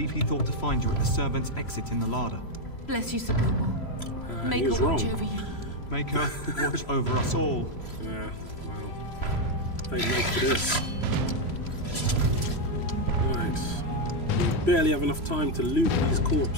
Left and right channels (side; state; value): right; late; 3.0 ms